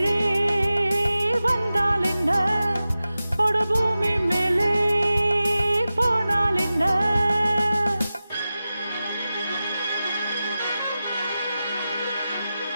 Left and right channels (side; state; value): both; inverted; correlation -0.94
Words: வந்தால் என்ன, அடபூமி மேலே போனால் என்ன.